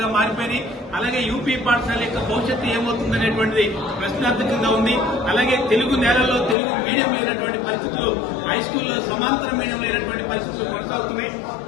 మారిపోయినాయి. అలాగే యూపీ పాఠశాల యొక్క భవిష్యత్తు ఏమవుతుందనేటువంటిది ప్రశ్నార్థకంగా ఉంది. అలాగే తెలుగు నేలల్లో తెలుగు మీడియం లేనటువంటి పరిస్థితులు, హై స్కూల్లో సమాంతర మీడియం లేనటువంటి పరిస్థితులు కొనసాగుతున్నాయి.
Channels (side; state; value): right; drops out; at 6.6 s